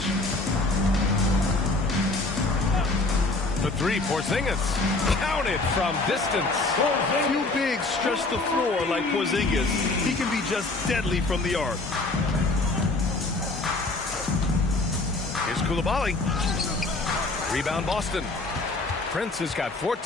The 3, Porzingis. Counted from distance. Few bigs stretch the floor like Porzingis. He can be just deadly from the arc. Here's Coulibaly. Rebound Boston. Prince has got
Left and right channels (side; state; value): right; quieter; 3.2 dB